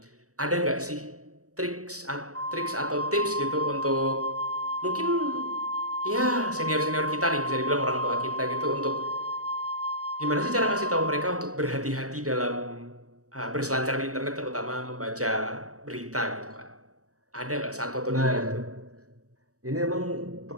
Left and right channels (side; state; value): left; late; 0.66 ms